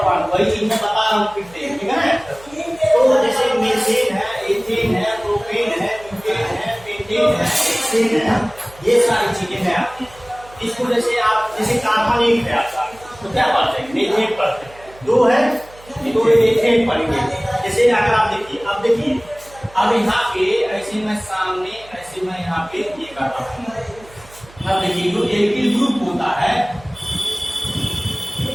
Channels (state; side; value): noise; right; hum, 23 dB below the sound